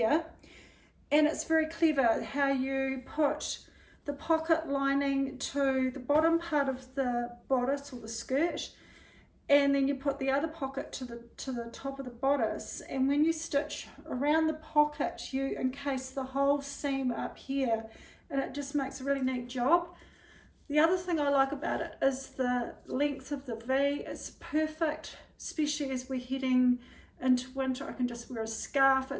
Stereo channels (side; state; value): both; identical; correlation 1.00